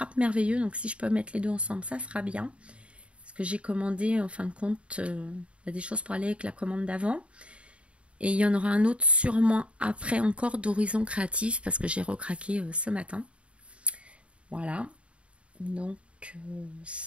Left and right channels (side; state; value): left; late; 0.060 ms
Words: Merveilleux. Donc si je peux mettre les deux ensemble, ça sera bien. Parce que j'ai commandé en fin de compte des choses pour aller avec la commande d'avant. Et il y en aura un autre sûrement après encore d'Horizon Créatif parce que j'ai recraqué ce matin. Voilà. Donc